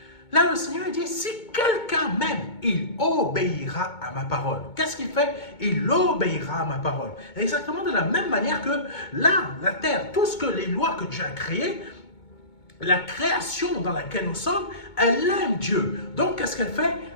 Là, le Seigneur dit, si quelqu'un m'aime, il obéira à ma parole. Qu'est-ce qu'il fait? Il obéira à ma parole. Exactement de la même manière que là, la terre, tout ce que les lois que Dieu a créées, la création dans laquelle nous sommes, elle aime Dieu. Donc, qu'est-ce qu'elle fait?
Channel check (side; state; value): right; late; 2.2 ms